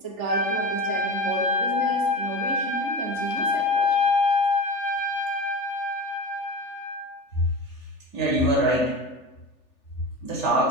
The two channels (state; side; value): late; right; 3.4 ms